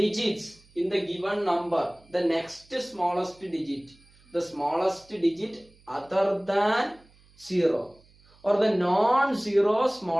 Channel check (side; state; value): right; noise; hum, 29 dB below the sound